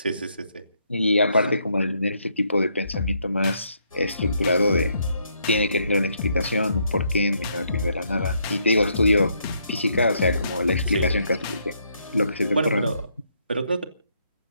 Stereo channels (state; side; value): inverted; both; correlation -0.73